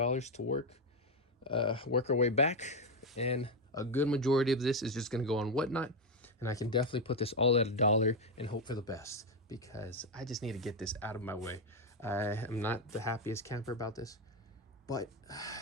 work our way back, and a good majority of this is just going to go on Whatnot, and I can definitely put this all at $1 and hope for the best, because I just need to get this out of my way. I am not the happiest camper about this, but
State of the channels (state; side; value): normal; both; correlation 0.07